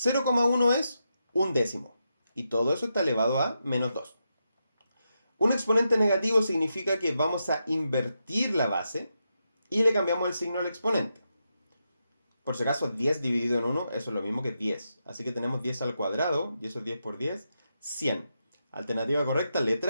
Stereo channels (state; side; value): inverted; both; correlation -0.85